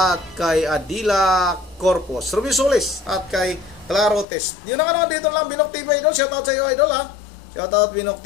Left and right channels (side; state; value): right; drops out; at 4.2 s